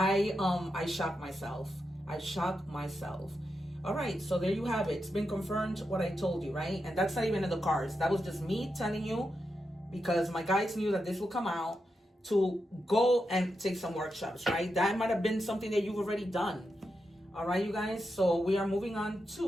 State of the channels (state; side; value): normal; both; correlation 0.87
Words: shock myself. I shock myself. All right, so there you have it. It's been confirmed what I told you, right? And that's not even in the cards. That was just me telling you because my guides knew that this will come out, to go and take some workshops, right? That might have been something that you've already done. All right, you guys. So we are moving on to